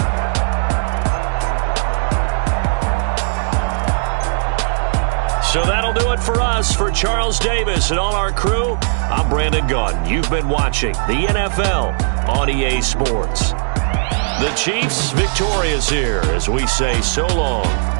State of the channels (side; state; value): left; silent; digital silence